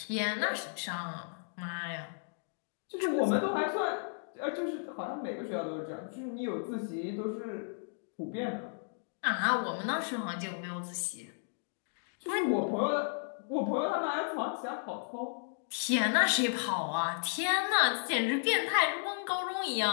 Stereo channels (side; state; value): right; silent; digital silence